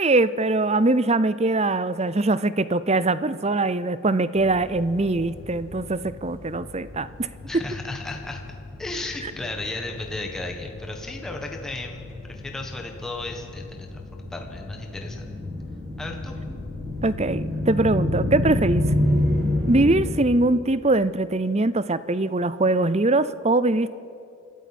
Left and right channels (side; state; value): both; normal; correlation 0.51